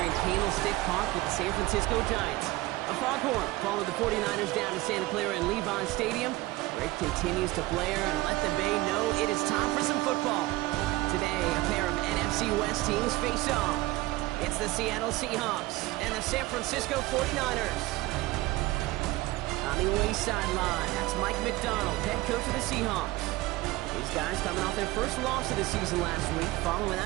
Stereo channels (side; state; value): left; quieter; 19.3 dB